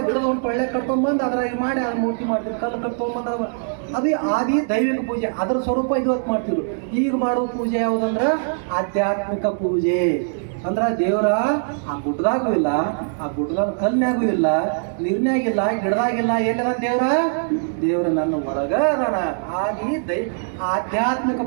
ಗಿಡದ ಒಂದು ಟೊಳ್ಳೆ ಕಟ್ಕೊಂಬಂದು ಅದ್ರಾಗ ಮಾಡಿ ಅದು ಮೂರ್ತಿ ಮಾಡ್ತಿದ್ವಿ. ಕಲ್ಲು ಕಟ್ಕೊಂಬಂದು ಅದು ಆದಿ ದೈವಿಕ ಪೂಜೆ. ಅದರ ಸ್ವರೂಪ ಇವತ್ತು ಮಾಡ್ತಿದ್ರು. ಈಗ ಮಾಡೋ ಪೂಜೆ ಯಾವುದಂದ್ರೆ ಆಧ್ಯಾತ್ಮಿಕ ಪೂಜೆ. ಅಂದ್ರೆ ದೇವರ ಆ ಗುಡ್ಡದಾಗೂ ಇಲ್ಲ, ಆ ಗುಡ್ಡದಾಗ ಕಲ್ನಾಗೂ ಇಲ್ಲ, ನೀರ್ನಾಗಿಲ್ಲ, ಗಿಡದಾಗಿಲ್ಲ. ಎಲ್ಲಿದ ದೇವರ ನನ್ನ ಒಳಗ ಅದಾನ. ಆದಿ ಆಧ್ಯಾತ್ಮಿಕ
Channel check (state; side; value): silent; left; digital silence